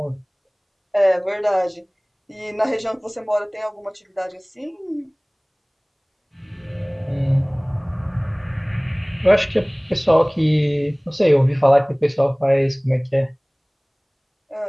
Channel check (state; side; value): identical; both; correlation 1.00